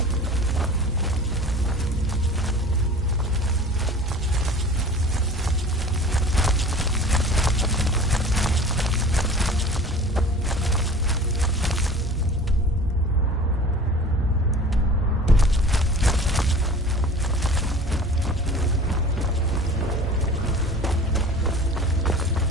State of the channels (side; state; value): both; normal; correlation 0.42